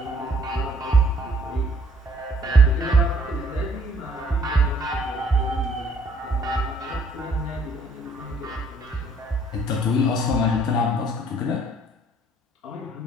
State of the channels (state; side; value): normal; both; correlation 0.61